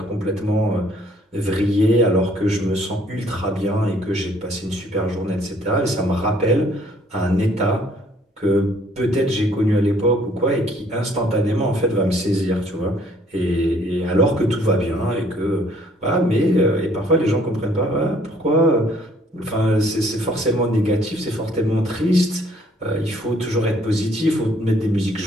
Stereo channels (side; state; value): both; normal; correlation 0.61